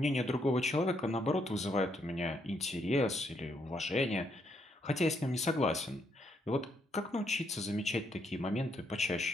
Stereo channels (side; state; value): both; normal; correlation 0.75